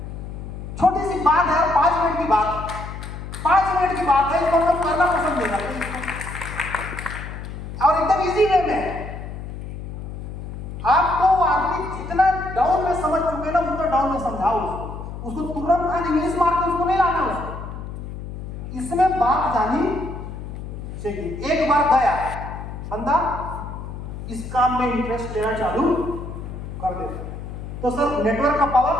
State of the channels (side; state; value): left; noise; hum, 9 dB below the sound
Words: छोटी सी बात है, 5 मिनट की बात, 5 मिनट की बात है, इसको हम करना पसंद नहीं करते और एकदम इजी वे में। आपको आदमी जितना डाउन में समझ चुके ना उतना डाउन में समझाओ उसको तुरंत खाली इंग्लिश मार के उसको नहीं लाना उसको। इसमें बात जानी चाहिए। एक बार गया बंदा इस काम में इंटरेस्ट लेना चालू कर दे तो सर नेटवर्क का पावर।